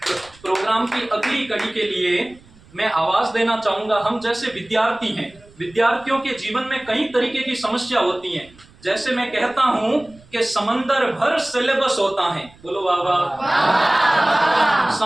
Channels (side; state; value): right; noise; rumble, 26 dB below the sound